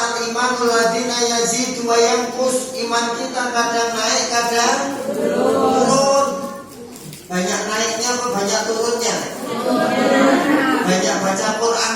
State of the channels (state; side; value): identical; both; correlation 1.00